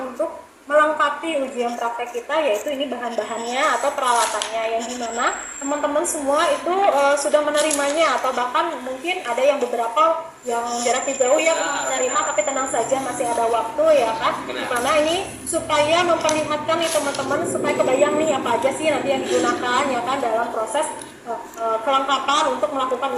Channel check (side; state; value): both; identical; correlation 1.00